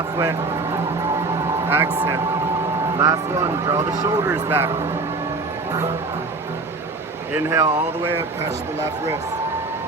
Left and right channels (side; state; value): left; quieter; 3.5 dB